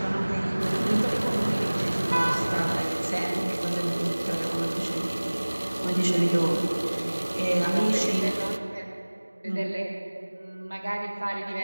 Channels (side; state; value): both; inverted; correlation -1.00